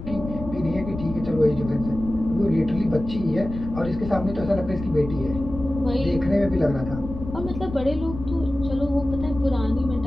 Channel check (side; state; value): left; noise; rumble, 10 dB below the sound